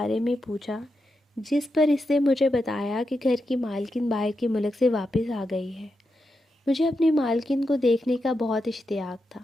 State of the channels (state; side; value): normal; both; correlation 0.87